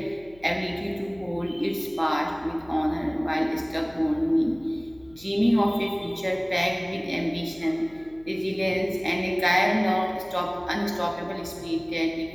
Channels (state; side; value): noise; left; hum, 25 dB below the sound